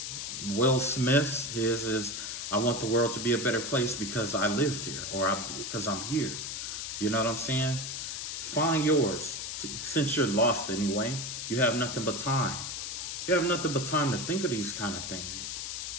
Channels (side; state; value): left; noise; hiss, 5 dB below the sound